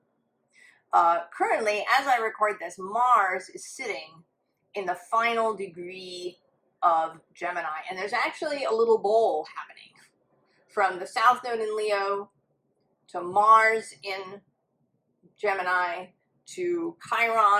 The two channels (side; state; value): both; identical; correlation 1.00